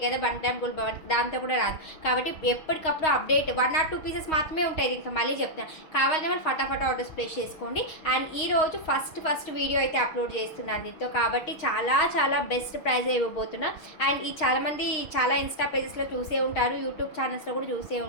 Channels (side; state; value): right; late; 6.4 ms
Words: కదా బంటామ్ గుల్ భవన్, దాంతో కూడా రాదు. కాబట్టి ఎప్పటికప్పుడు అప్డేట్ 1 or 2 పీసెస్ మాత్రమే ఉంటాయి. ఇంకా మళ్ళీ చెప్తాను, కావాలని ఫటాఫట్ ఆర్డర్స్ ప్లేస్ చేసుకోండి. అండ్ ఈరోజు ఫస్ట్ వీడియో అయితే అప్లోడ్ చేస్తున్నాను దీంతో, కాబట్టి చాలా బెస్ట్ ప్రైజ్ ఇవ్వబోతున్నా. అండ్ ఈ చాలామంది చాలా ఇన్స్టా పేజెస్లో చూసే ఉంటారు, యూట్యూబ్ ఛానల్స్లో కూడా చూసే